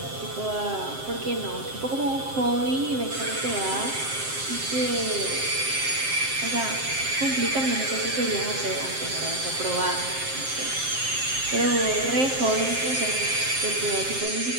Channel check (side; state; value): left; late; 7.6 ms